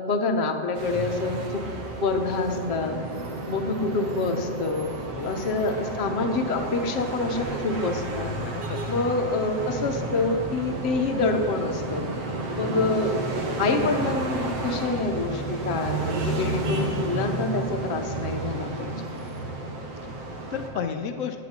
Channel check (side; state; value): left; late; 7.7 ms